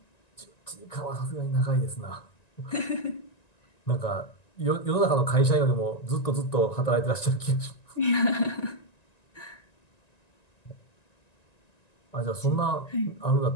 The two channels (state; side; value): late; right; 1.9 ms